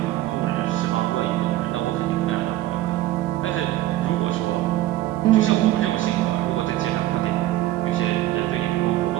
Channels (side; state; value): left; quieter; 15.1 dB